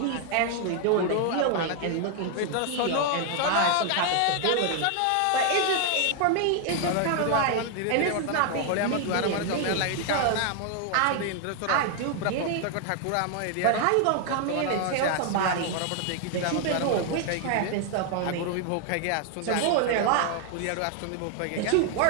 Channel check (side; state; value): both; different; correlation 0.00